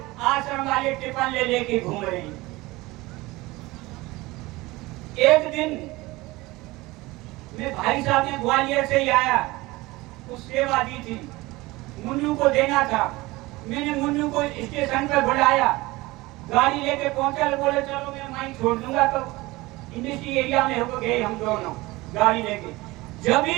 आश्रम वाले टिफिन ले लेके घूम रहे हैं। एक दिन मैं भाई साहब ने ग्वालियर से ही आया, कुछ सेवा दी थी, मुन्नू को देना था। मैंने मुन्नू को स्टेशन पर बुलाया, गाड़ी लेके पहुंचा, बोले चलो मैं वहीं छोड़ दूंगा। तो इंडस्ट्री एरिया में हो गए हम दोनों गाड़ी लेके। जब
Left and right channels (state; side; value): quieter; left; 20.8 dB